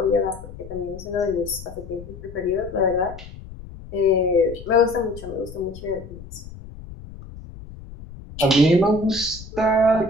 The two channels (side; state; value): left; noise; rumble, 15 dB below the sound